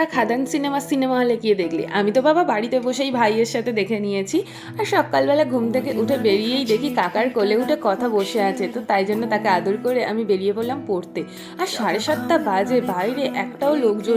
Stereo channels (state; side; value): identical; both; correlation 1.00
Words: খাদান সিনেমা হলে গিয়ে দেখলে? আমি তো বাবা বাড়িতে বসেই ভাইয়ের সাথে দেখে নিয়েছি। আর সকালবেলা ঘুম থেকে উঠে বেরিয়েই দেখি কাকার কোলে উঠে কথা বসে আছে, তো তাই জন্য তাকে আদর করে আমি বেরিয়ে পড়লাম পড়তে। আর 7:30 বাজে, বাইরে একটাও